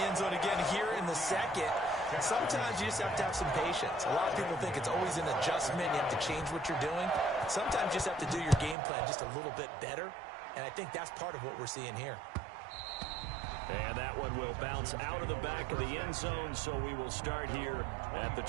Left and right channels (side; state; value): left; drops out; at 8.8 s